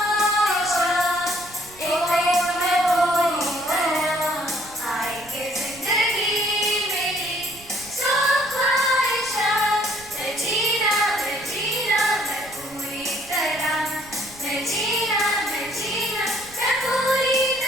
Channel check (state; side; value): noise; right; rumble, 22 dB below the sound